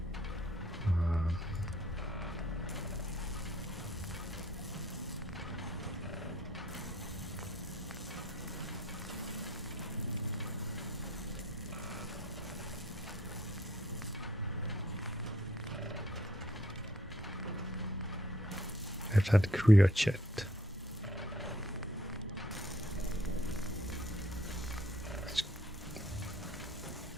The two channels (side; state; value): both; normal; correlation 0.63